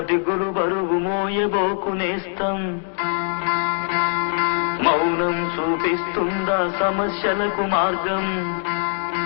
దిగులు బరువు మోయబోకునేస్తాం, మౌనం చూపిస్తుందా సమస్యలకు మార్గం.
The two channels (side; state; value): right; silent; 60 dB below the other